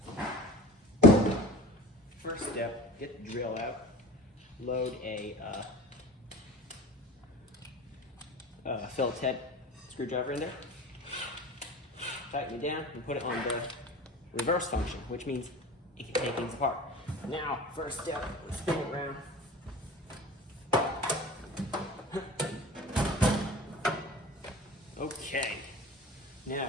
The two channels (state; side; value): normal; both; correlation 0.37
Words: First step, get the drill out, load a Phillips head screwdriver in there, tighten it down, and put it on the reverse function, which means it can take things apart. Now, first step, spin it around. Okay,